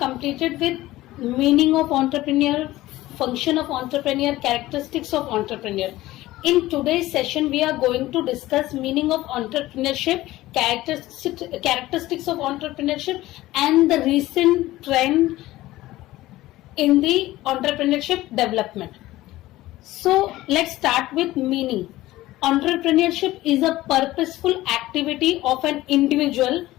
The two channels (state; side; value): quieter; right; 16.8 dB